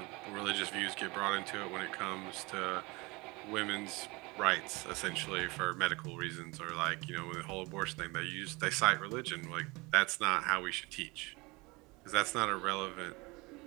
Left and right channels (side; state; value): left; quieter; 24.8 dB